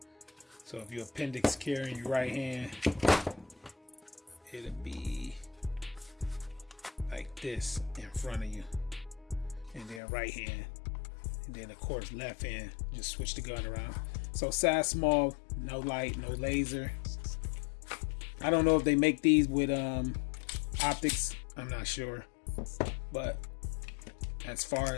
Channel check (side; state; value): right; drops out; at 10.0 s